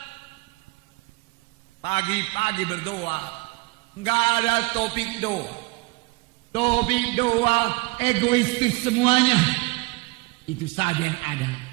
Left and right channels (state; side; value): quieter; left; 24.7 dB